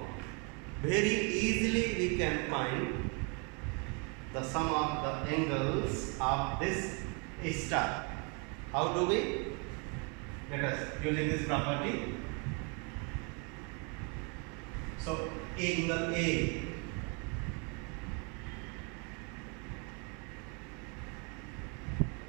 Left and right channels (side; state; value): left; quieter; 33.3 dB